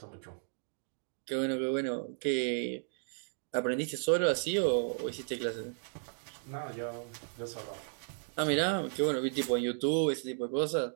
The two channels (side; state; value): left; silent; digital silence